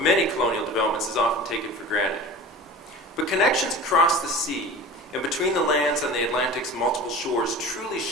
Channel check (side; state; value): both; normal; correlation 0.37